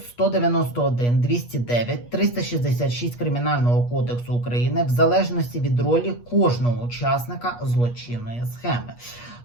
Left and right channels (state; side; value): late; right; 8.4 ms